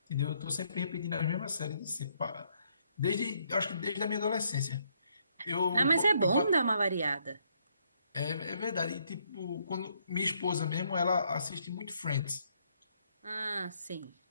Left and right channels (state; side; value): inverted; both; correlation -0.72